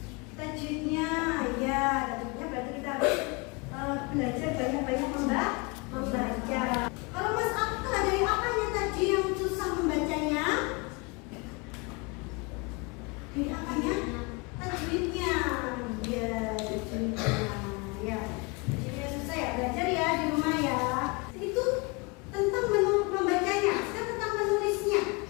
Tajwidnya, ya, tajwidnya berarti kita harus belajar banyak-banyak membaca. Kalau Mas Akka, dari apanya tadi yang susah membacanya? Dari apanya? Tajwidnya, ya, tajwidnya, ya. Jadi susah ya, belajar ya di rumah ya. Itu tentang membacanya, sekarang tentang menulisnya.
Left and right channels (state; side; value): quieter; right; 28.8 dB